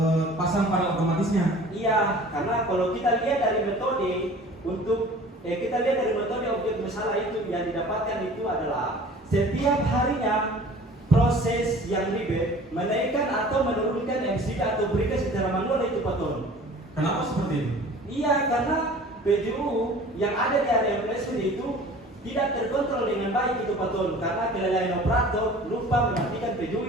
pasang panel otomatisnya. Iya, karena kalau kita lihat dari metode objek masalah itu yang didapatkan itu adalah setiap harinya proses yang ribet menaikkan atau menurunkan MCD atau berikan secara manual itu paton. Kenapa seperti itu? Iya, karena PJU yang ada di area placement itu tidak terkontrol dengan baik itu paton karena kelalaian operator lupa mematikan PJU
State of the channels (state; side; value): normal; both; correlation 0.45